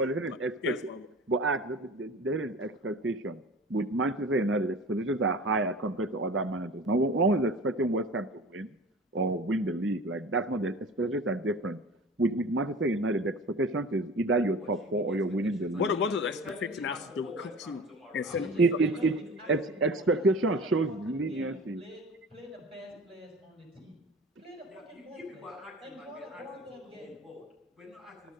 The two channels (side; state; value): both; normal; correlation 0.38